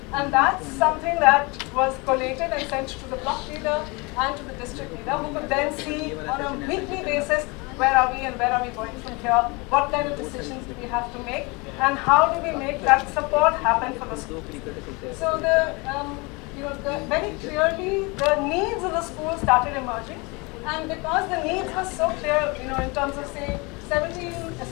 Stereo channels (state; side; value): quieter; right; 27.4 dB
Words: And that's something that was collated and sent to the block leader and to the district leader, who could then see on a weekly basis where are we and where are we going from here, what kind of decisions do we have to make, and how do we make that support happen for the schools. So very clearly the needs of the school started emerging, and because the needs were so clear, in terms of say